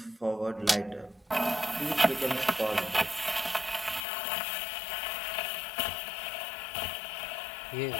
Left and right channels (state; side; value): drops out; right; at 4.0 s